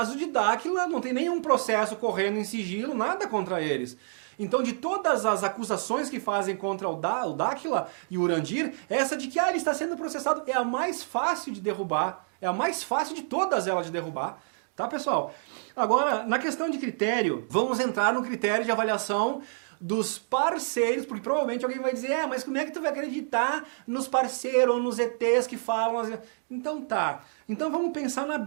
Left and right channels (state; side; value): silent; left; digital silence